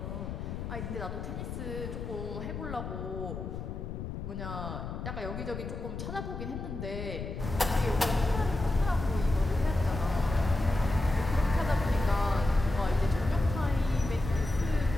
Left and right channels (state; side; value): noise; left; rumble, 6 dB below the sound